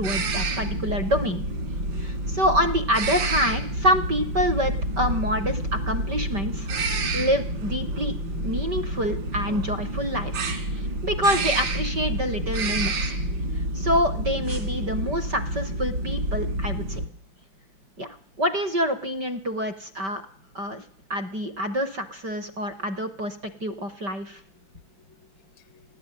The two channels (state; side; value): late; left; 5.2 ms